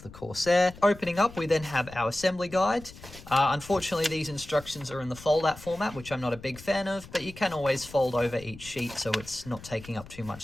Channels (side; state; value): left; noise; rumble, 17 dB below the sound